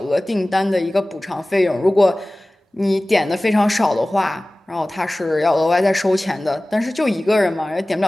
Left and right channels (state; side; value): normal; both; correlation 0.98